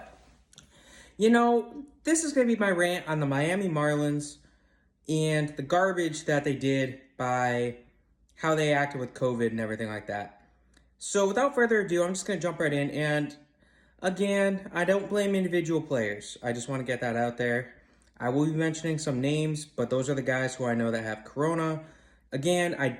this is going to be my rant on the Miami Marlins and the garbage that they did by how they acted with COVID and everything like that. So without further ado, I'm just going to jump right in. And again, I don't blame individual players. I just want to get that out there. I will be mentioning some names, but those are the guys who I know that have corona. Again, I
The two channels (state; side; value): identical; both; correlation 1.00